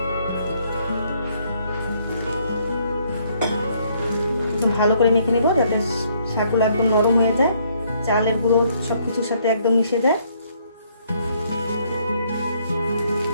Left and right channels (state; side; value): inverted; both; correlation -0.68